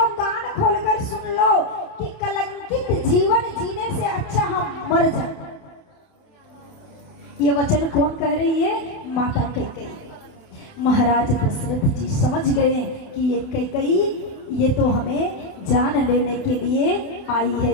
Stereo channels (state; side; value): late; right; 28 ms